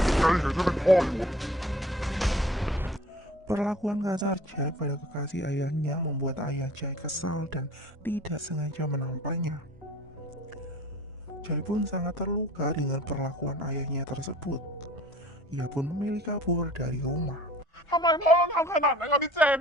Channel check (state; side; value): normal; both; correlation 0.48